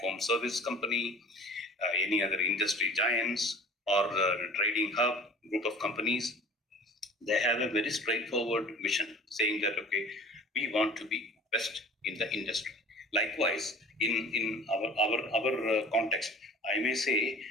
service company, any other industry giants, or trading hub group of companies, they have a very straightforward mission saying that, okay, we want to be best in the industry. Likewise, in our context, I may say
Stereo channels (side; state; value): both; normal; correlation 0.42